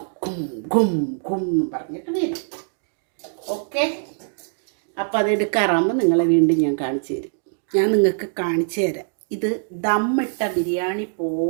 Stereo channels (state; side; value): silent; left; digital silence